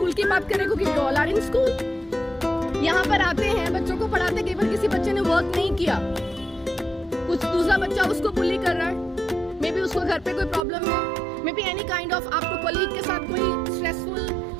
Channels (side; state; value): left; drops out; at 10.7 s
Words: की बात करें क्योंकि we all are in school. यहाँ पर आते हैं, बच्चों को पढ़ाते, कई बार किसी बच्चे ने वर्क नहीं किया, कुछ दूसरा बच्चा उसको बुली कर रहा है, मे बी उसको घर पे कोई प्रॉब्लम है, may be any kind of आपको कलीग के साथ कोई स्ट्रेसफुल